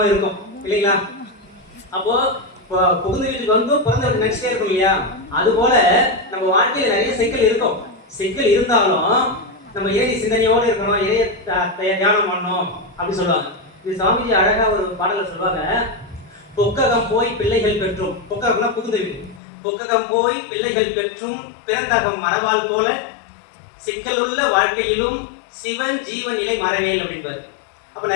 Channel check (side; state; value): right; drops out; at 19.4 s